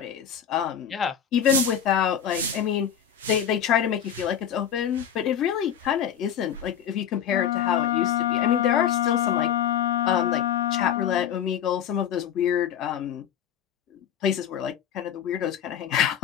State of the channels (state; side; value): quieter; right; 8.9 dB